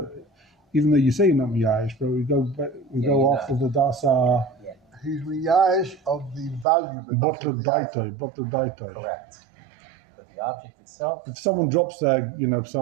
even though you say you're not miyash, but we go you're after not. the dasa Yeah, He's miyash of the value, but not butler of the item. daito. correct. But the object itself, If someone drops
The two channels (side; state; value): left; drops out; at 6.7 s